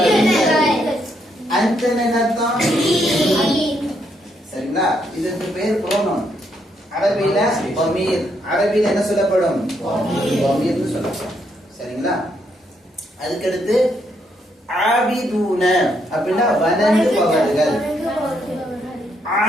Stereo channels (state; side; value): normal; both; correlation 0.75